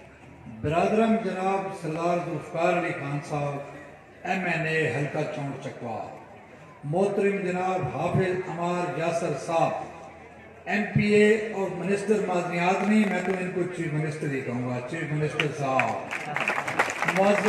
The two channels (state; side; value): identical; both; correlation 1.00